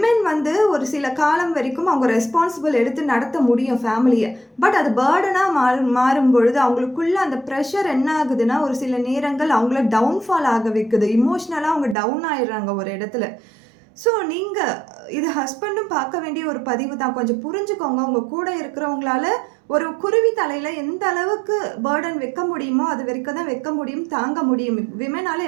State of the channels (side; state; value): left; drops out; at 12.0 s